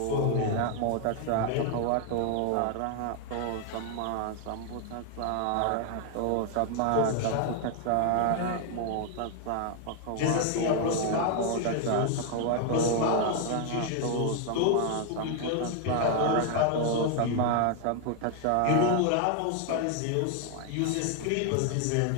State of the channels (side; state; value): both; different; correlation 0.00